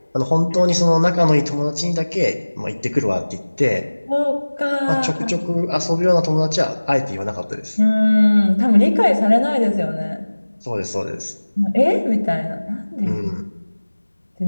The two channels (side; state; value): both; inverted; correlation -1.00